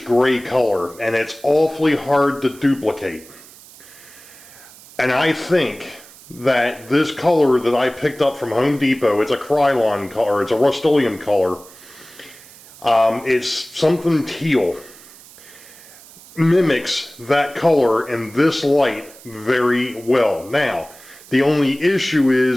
gray color, and it's awfully hard to duplicate. And I think that this color that I picked up from Home Depot, it's a Krylon color, it's a Rust-Oleum color, it's something teal, mimics that color in this light very well. Now, the only issue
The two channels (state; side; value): noise; right; hiss, 21 dB below the sound